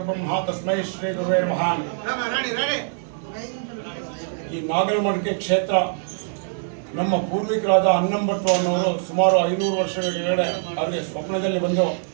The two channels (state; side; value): silent; left; digital silence